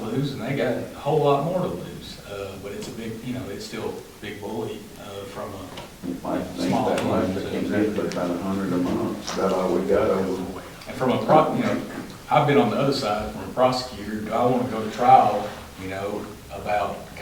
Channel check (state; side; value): identical; both; correlation 1.00